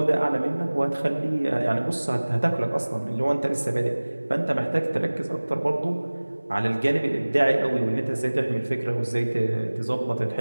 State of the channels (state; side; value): inverted; both; correlation -1.00